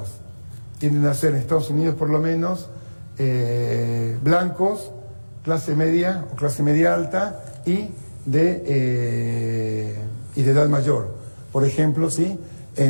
Tienden a ser, en Estados Unidos por lo menos, blancos, clase media o clase media alta y de edad mayor. Por ejemplo, ¿sí?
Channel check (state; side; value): inverted; both; correlation -1.00